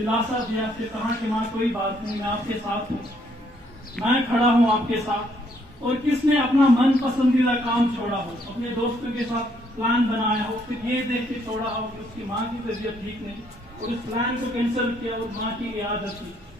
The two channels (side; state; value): both; normal; correlation 0.69